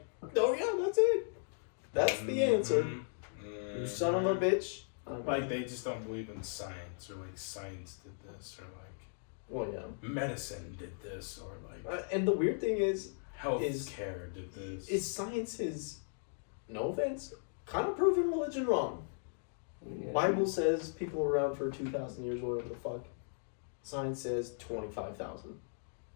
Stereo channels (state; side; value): silent; right; digital silence